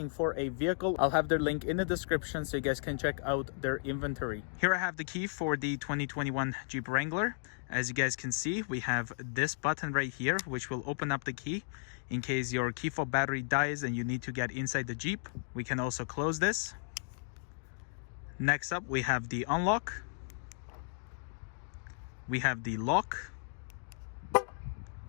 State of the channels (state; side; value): silent; right; digital silence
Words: for a vehicle, I'll have their link in the description so you guys can check out their inventory. Here I have the key for the 2021 Jeep Wrangler. As you guys can see, we have this button right here which will open up the key in case your key fob battery dies and you need to get inside the Jeep. We can also close this. Next up, we have the unlock. We have the lock,